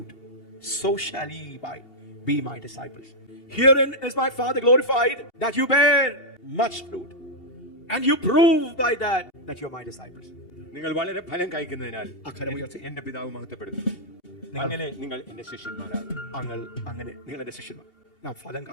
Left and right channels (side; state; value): right; late; 2.8 ms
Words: So shall ye be my disciples. Herein is my Father glorified, that you bear much fruit, and you prove by that you are my disciples. നിങ്ങൾ വളരെ ഫലം കായ്ക്കുന്നതിനാൽ എന്റെ പിതാവ് മഹത്വപ്പെടുന്നു, അങ്ങനെ നിങ്ങൾ എന്റെ ശിഷ്യന്മാരാകും. അങ്ങനെ നിങ്ങൾ എന്റെ ശിഷ്യന്മാർ. നാം ഫലം